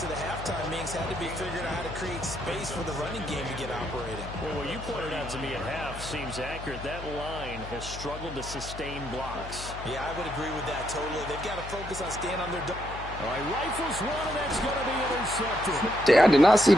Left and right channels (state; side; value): noise; left; hum, 11 dB below the sound